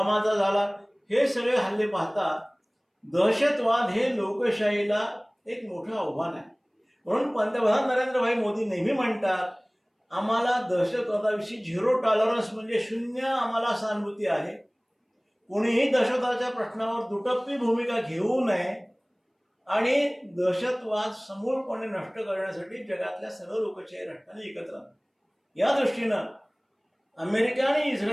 झाला. हे सगळे हल्ले पाहता दहशतवाद हे लोकशाहीला एक मोठं आव्हान आहे. म्हणून पंतप्रधान नरेंद्रभाई मोदी नेहमी म्हणतात आम्हाला दहशतवादाविषयी 0 टॉलरन्स म्हणजे शून्य आम्हाला सहानुभूती आहे. कोणीही दहशतवादाच्या प्रश्नावर दुटप्पी भूमिका घेऊ नये आणि दहशतवाद समूळपणे नष्ट करण्यासाठी जगातल्या सर्व लोकशाही राष्ट्रांनी एकत्र आले. या दृष्टीनं अमेरिका आणि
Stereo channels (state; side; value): identical; both; correlation 1.00